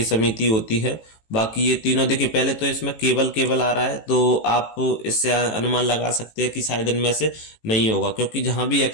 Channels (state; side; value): late; right; 18 ms